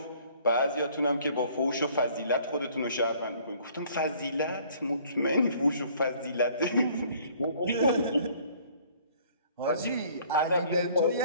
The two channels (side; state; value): both; inverted; correlation -0.57